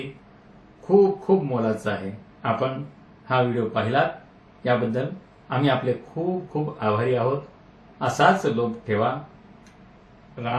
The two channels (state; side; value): identical; both; correlation 1.00